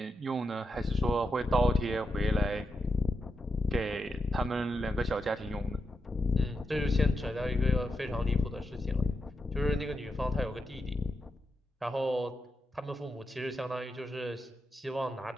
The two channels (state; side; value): normal; both; correlation 0.86